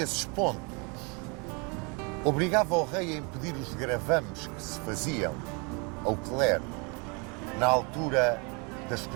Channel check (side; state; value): left; quieter; 32.0 dB